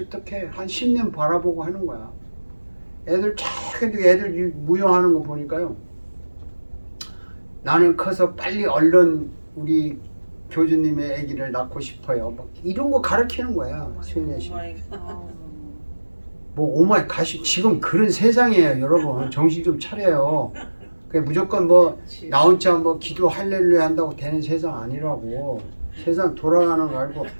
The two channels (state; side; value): inverted; both; correlation -1.00